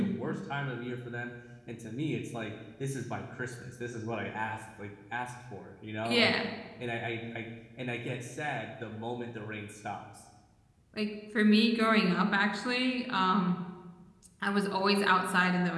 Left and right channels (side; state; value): both; identical; correlation 1.00